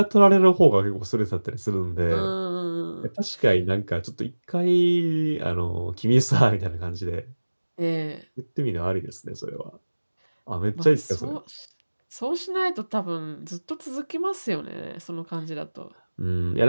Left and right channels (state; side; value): inverted; both; correlation -1.00